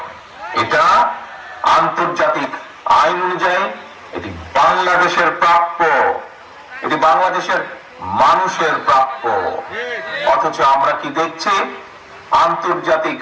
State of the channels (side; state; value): both; identical; correlation 1.00